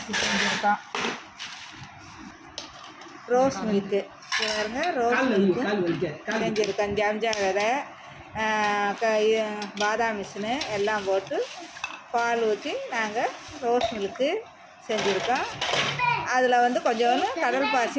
செஞ்சுருக்கோம். ரோஸ் மில்க்கு பாருங்க, ரோஸ் மில்க்கு செஞ்சுருக்கோம். ஜம்ஜா விதை, பாதாம் மிஷினு எல்லாம் போட்டு பால் ஊற்றி நாங்கள் ரோஸ் மில்க்கு செஞ்சுருக்கோம். அதில் வந்து கொஞ்சோண்டு கடல்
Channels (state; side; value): identical; both; correlation 1.00